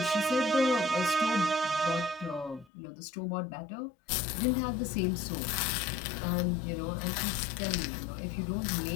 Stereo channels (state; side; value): drops out; right; at 2.7 s